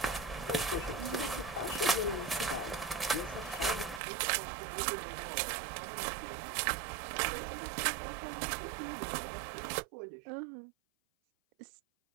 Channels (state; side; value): drops out; left; at 4.0 s